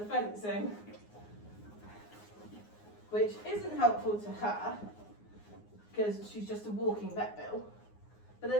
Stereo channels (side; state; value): right; late; 9.6 ms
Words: fencing, which isn't helpful to her because she's just a walking vet bill, but